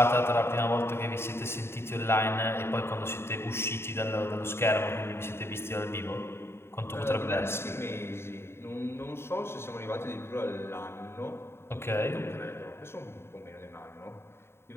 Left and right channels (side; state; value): right; late; 0.12 ms